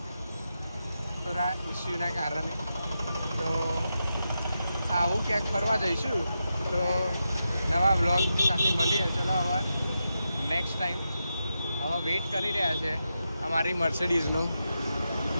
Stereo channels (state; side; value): inverted; both; correlation -0.88